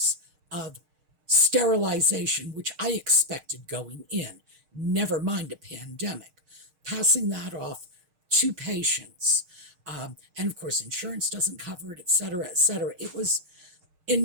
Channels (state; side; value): late; left; 6.5 ms